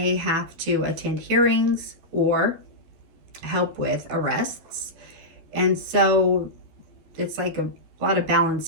have to attend hearings or help with arrests. And so it's like a lot of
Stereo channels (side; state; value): left; late; 13 ms